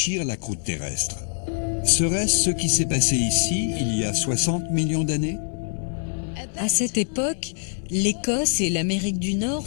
la croûte terrestre. Serait-ce ce qui s'est passé ici il y a 60 millions d'années? À cette époque, l'Écosse et l'Amérique du Nord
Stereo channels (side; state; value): right; silent; digital silence